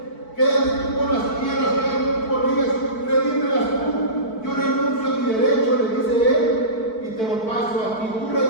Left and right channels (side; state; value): right; late; 4.6 ms